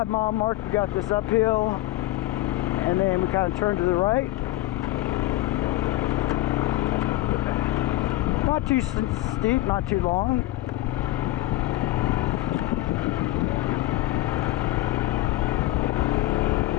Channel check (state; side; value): quieter; right; 16.2 dB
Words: mile mark, we got this uphill, and then we kind of turn to the right. Not too steep, not too long.